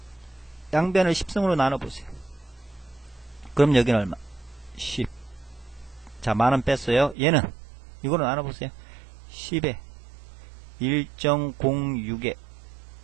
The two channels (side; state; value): left; drops out; at 7.2 s